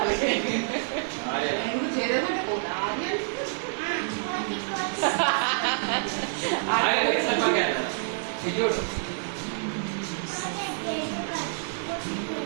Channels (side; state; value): left; silent; digital silence